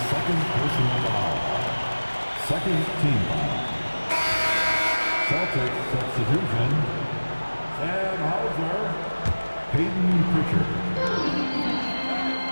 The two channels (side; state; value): both; inverted; correlation -1.00